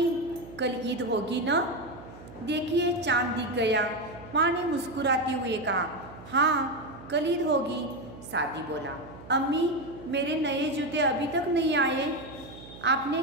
कल ईद होगी ना? देखिए चांद दिख गया। माँ ने मुस्कुराते हुए कहा, हाँ कल ईद होगी। सादी बोला, अम्मी मेरे नए जूते अभी तक नहीं आए। आपने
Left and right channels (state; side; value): noise; right; hum, 17 dB below the sound